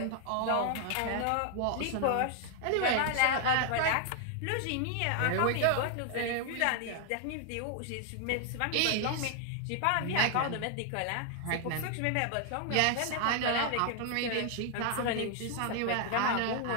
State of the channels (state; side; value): different; both; correlation 0.00